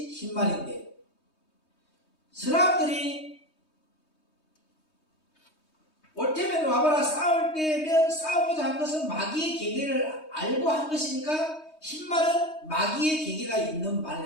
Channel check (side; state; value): right; late; 3.2 ms